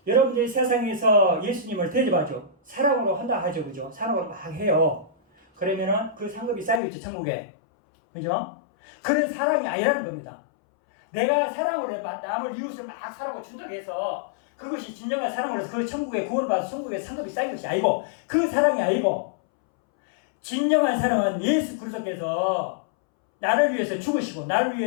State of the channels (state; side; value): drops out; right; at 6.8 s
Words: 여러분들이 세상에서 예수님을 대접하죠. 사랑으로 한다 하죠. 그죠? 사랑으로 막 해요. 그러면은 그 상급이 쌓이겠죠. 천국에. 그죠? 그런 사랑이 아니라는 겁니다. 내가 사랑으로 남을 이웃을 막 사랑으로 준다고 해서 그것이 진정한 사랑으로서 그 천국에 구원을 받아서 천국에 상급이 쌓인 것이 아니고 그 사랑이 아니고 진정한 사랑은 예수 그리스도께서 나를 위해서 죽으시고 나를